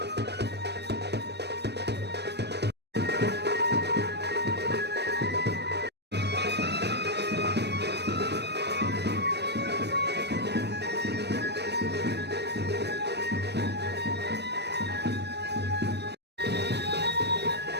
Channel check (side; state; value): left; late; 0.49 ms